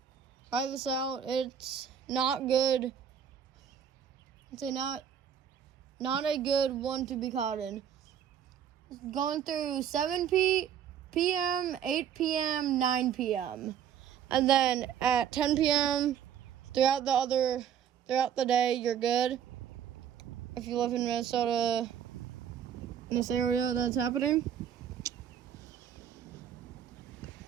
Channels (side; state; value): left; quieter; 9.0 dB